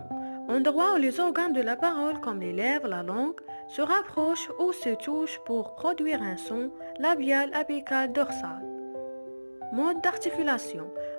endroit où les organes de la parole comme les lèvres, la langue, se rapprochent ou se touchent pour produire un son labial, apical, dorsal. Mode d'articulation,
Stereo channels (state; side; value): inverted; both; correlation -1.00